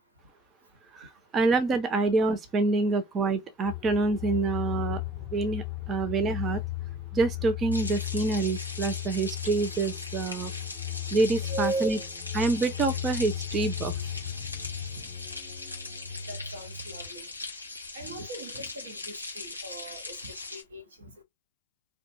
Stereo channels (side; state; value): both; normal; correlation 0.46